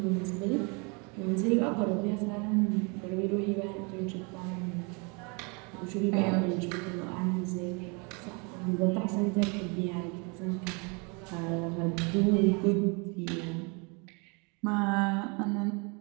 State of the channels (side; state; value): left; quieter; 31.9 dB